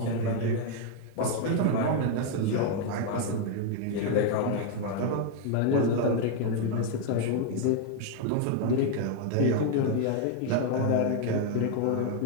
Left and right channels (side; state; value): both; different; correlation 0.00